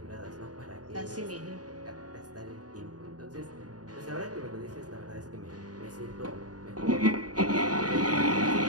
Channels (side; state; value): left; late; 0.68 ms